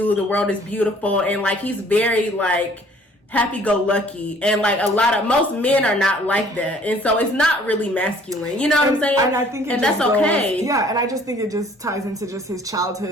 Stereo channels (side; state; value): both; normal; correlation 0.56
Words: the world is beautiful, and like he's very like happy-go-lucky, and like most men are not like that, and so it's not really masculine. You know what I'm saying? And I think that's okay. Yeah, and I just think it just ties into just his